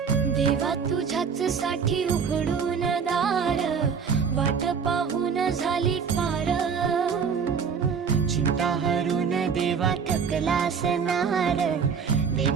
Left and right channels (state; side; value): quieter; left; 6.3 dB